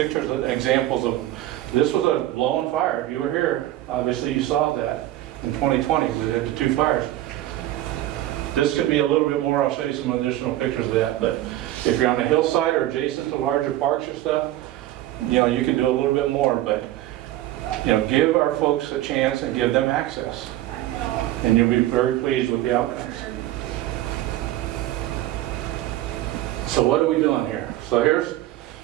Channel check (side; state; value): left; quieter; 14.6 dB